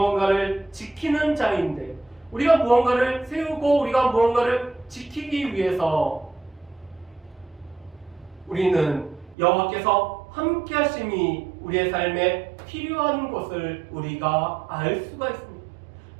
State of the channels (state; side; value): drops out; left; at 9.3 s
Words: 지키는 자인데, 우리가 무언가를 세우고 우리가 무언가를 지키기 위해서 우리는 여호와께서 함께 하심이 우리의 삶에 필요한 것을 우리가 알 수가 있습니다.